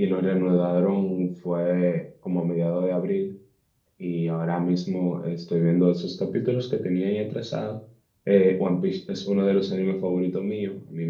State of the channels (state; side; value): identical; both; correlation 1.00